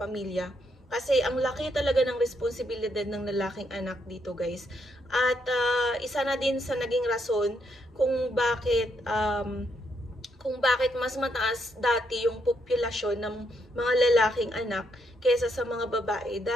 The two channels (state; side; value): normal; both; correlation 0.76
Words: Kasi ang laki talaga ng responsibilidad ng lalaking anak dito guys. At isa na din sa naging rason kung bakit mas mataas dati yung populasyon ng mga lalaking anak kaysa sa mga babae.